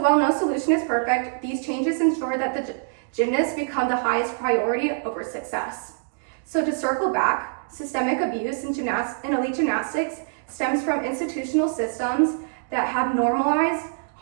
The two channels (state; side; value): silent; left; digital silence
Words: no solution is perfect, these changes ensure that the gymnasts become the highest priority over success. So to circle back, systemic abuse in elite gymnastics stems from institutional systems that have normalized